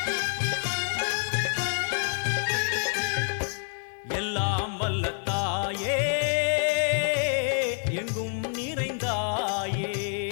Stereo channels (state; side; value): silent; right; 60 dB below the other